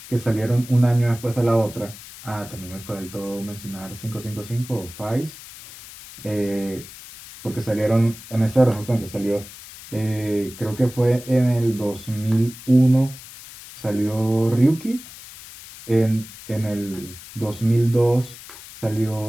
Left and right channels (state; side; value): noise; left; hiss, 16 dB below the sound